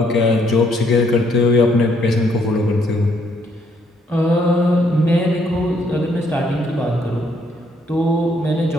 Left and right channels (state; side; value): normal; both; correlation 0.69